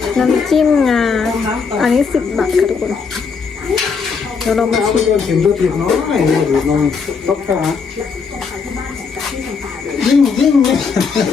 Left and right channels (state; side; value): quieter; right; 5.4 dB